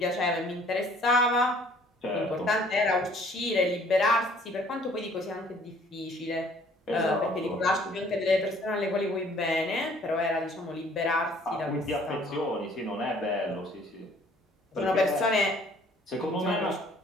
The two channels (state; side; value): normal; both; correlation 0.57